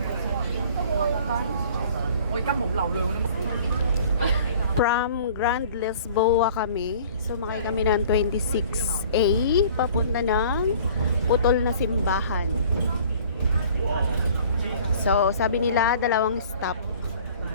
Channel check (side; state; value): both; inverted; correlation -0.49